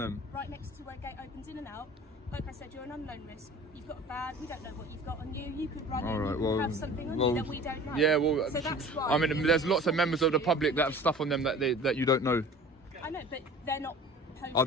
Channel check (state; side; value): normal; both; correlation 0.43